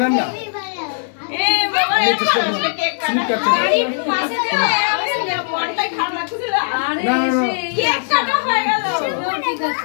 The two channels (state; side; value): silent; right; digital silence